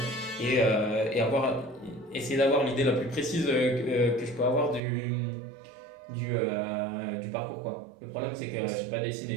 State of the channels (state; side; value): drops out; left; at 4.8 s